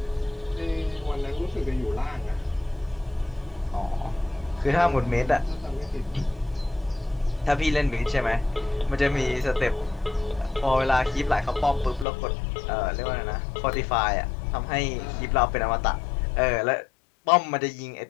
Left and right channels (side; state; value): right; drops out; at 12.1 s